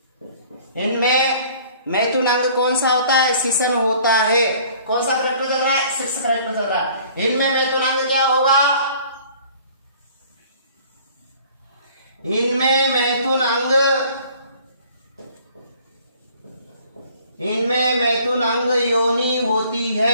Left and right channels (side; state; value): both; inverted; correlation -0.53